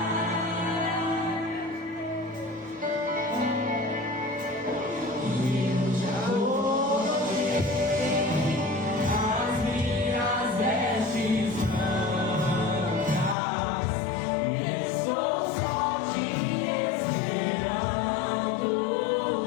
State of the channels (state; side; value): drops out; right; at 13.4 s